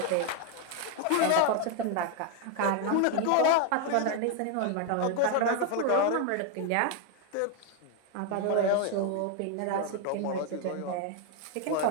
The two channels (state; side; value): different; both; correlation 0.01